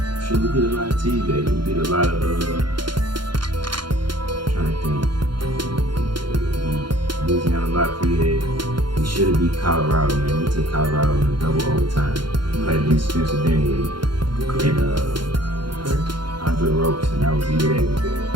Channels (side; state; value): left; late; 0.72 ms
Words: lot of teams. We beat a lot of trying to think. Louisiana Lafayette. We should have beat Colorado, man. We took Colorado in a double overtime. Played against Spencer Dinwiddie and Andre Ropes, and that was the year they was there.